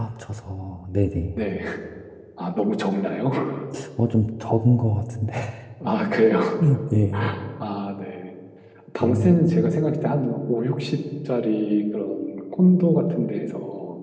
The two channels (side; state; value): both; identical; correlation 1.00